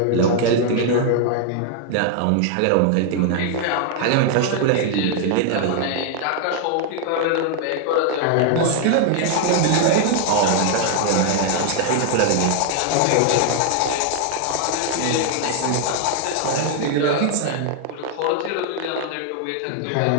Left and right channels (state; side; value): different; both; correlation 0.00